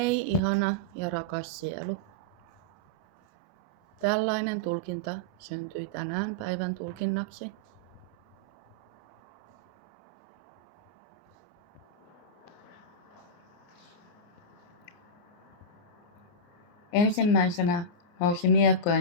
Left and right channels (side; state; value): right; late; 29 ms